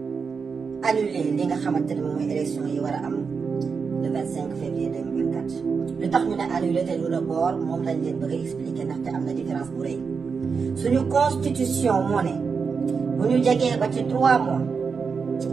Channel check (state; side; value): quieter; left; 5.4 dB